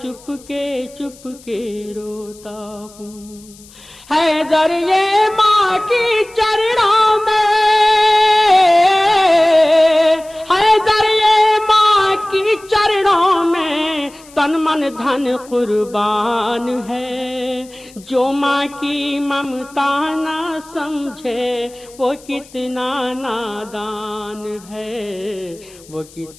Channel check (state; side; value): noise; left; hiss, 23 dB below the sound